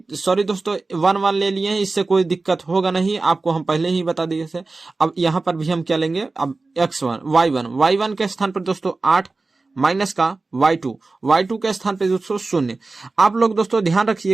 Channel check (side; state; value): left; quieter; 3.6 dB